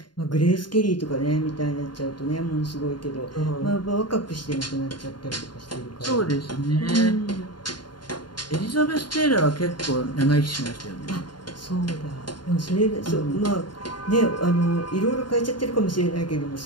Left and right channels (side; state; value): right; late; 0.71 ms